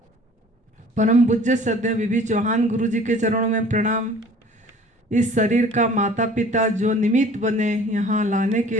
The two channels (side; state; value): both; normal; correlation 0.49